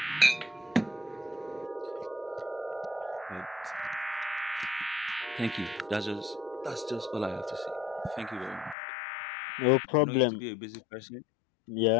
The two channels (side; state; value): right; drops out; at 8.8 s